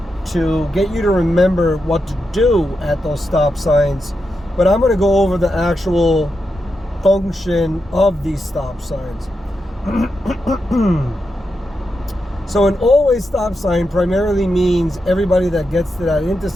to get you to remember what to do at those stop signs, but I'm going to go over the actual function of these stop signs. So an always stop sign primarily means everybody that gets to that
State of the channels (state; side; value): normal; both; correlation 0.87